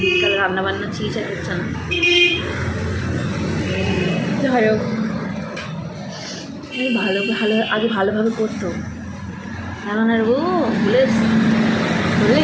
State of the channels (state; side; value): identical; both; correlation 1.00